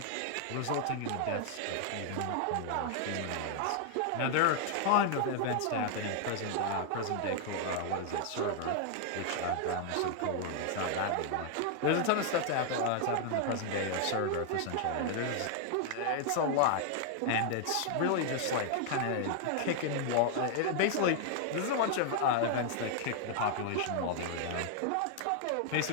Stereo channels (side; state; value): both; different; correlation 0.00